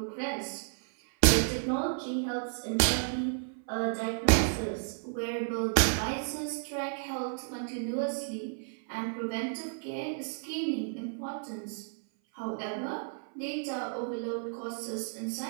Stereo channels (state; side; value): silent; left; 56 dB below the other